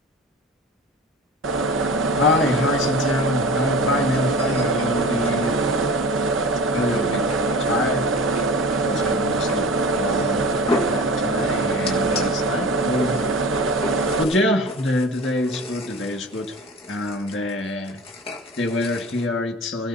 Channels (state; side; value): normal; both; correlation 0.36